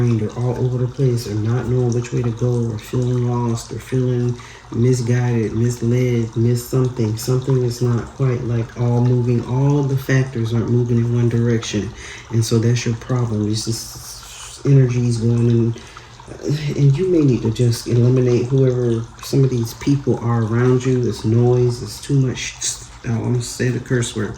or all over the place, or not knowing which way to go, or feeling lost, or feeling misguided, misled, missed something. Something is not quite like all moving. All the factors aren't moving in one direction. And so that's your problem. It's just energies going in. And you may need to just eliminate whoever some of these people are around you. This noise, it's too much. I'm going to say the curse word.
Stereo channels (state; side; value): identical; both; correlation 1.00